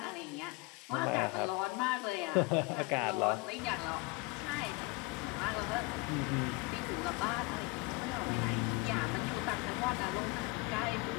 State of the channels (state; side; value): quieter; right; 25.2 dB